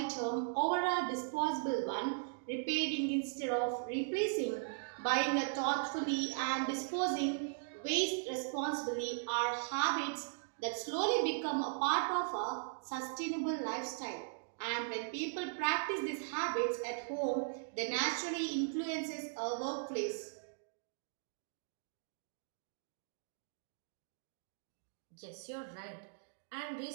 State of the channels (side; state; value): left; silent; digital silence